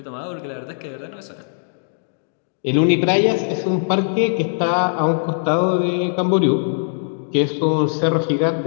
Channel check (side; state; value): right; silent; digital silence